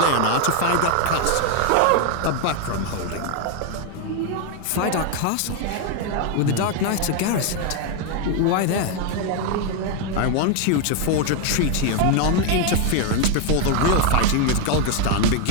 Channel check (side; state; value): both; different; correlation 0.01